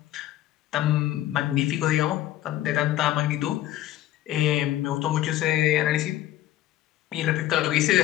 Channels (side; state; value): right; quieter; 13.8 dB